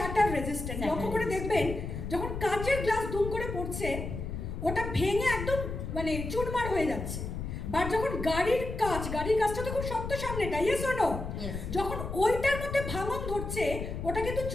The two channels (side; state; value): left; noise; rumble, 6 dB below the sound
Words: রেজিস্ট্যান্ট। লক্ষ্য করে দেখবেন যখন কাচের গ্লাস দুম করে পড়ছে, ওটা ভেঙে একদম মানে চুরমার হয়ে যাচ্ছে। বাট যখন গাড়ির কাঁচটা তো খুব শক্ত সামনেটা, ইয়েস অর নো, যখন ওইটার মধ্যে ভাঙন ধরছে ওটা কিন্তু